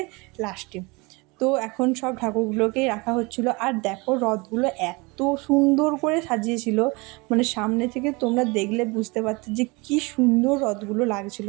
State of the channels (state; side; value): quieter; left; 26.4 dB